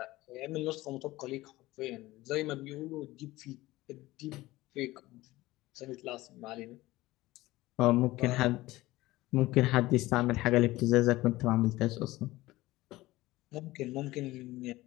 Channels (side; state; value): right; quieter; 18.3 dB